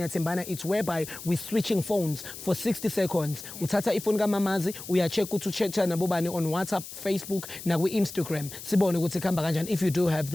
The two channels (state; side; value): noise; left; hiss, 12 dB below the sound